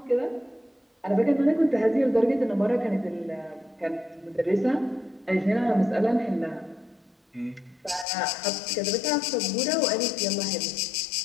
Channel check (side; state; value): right; drops out; at 8.1 s